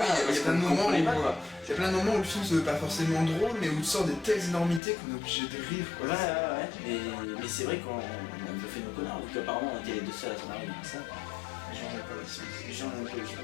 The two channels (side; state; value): right; drops out; at 4.8 s